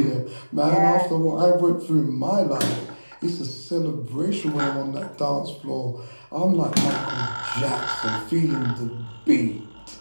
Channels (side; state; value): both; inverted; correlation -1.00